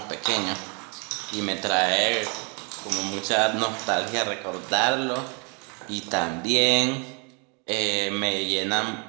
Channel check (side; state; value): left; quieter; 34.3 dB